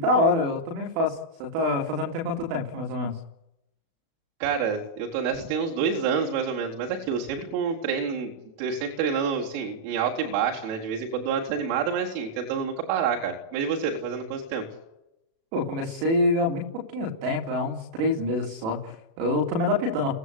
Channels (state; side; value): late; left; 36 ms